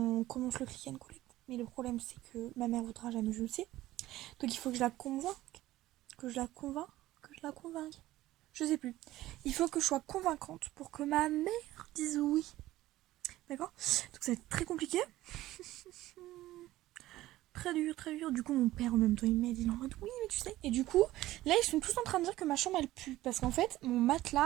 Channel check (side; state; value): left; quieter; 16.0 dB